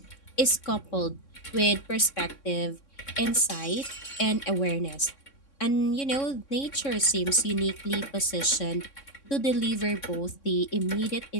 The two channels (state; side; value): late; right; 3.6 ms